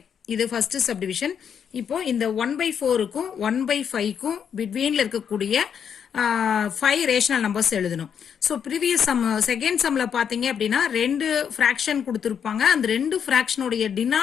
இது ஃபர்ஸ்ட் சப்டிவிஷன். இப்போ இந்த 1 by 4க்கும் 1 by 5க்கும் பிட்வீன்ல இருக்கக்கூடிய 5 ரேஷனல் நம்பர்ஸ் எழுதணும். ஸோ ப்ரீவியஸ் சம் செகண்ட் சம்ல பாத்தீங்க அப்படின்னா 2 ஃபிராக்ஷன் கொடுத்துருப்பாங்க. அந்த 2 ஃபிராக்ஷனுடைய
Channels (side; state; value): right; quieter; 7.8 dB